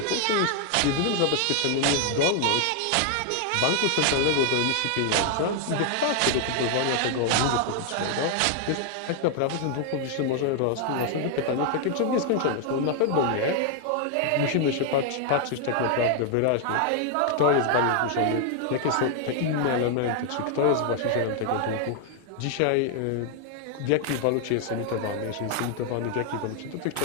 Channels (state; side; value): different; both; correlation 0.00